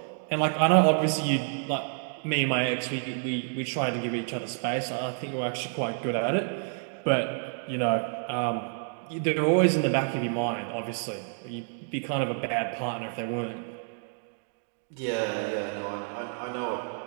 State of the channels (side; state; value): left; silent; 57 dB below the other